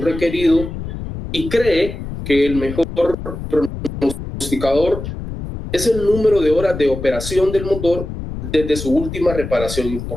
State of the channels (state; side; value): noise; left; rumble, 8 dB below the sound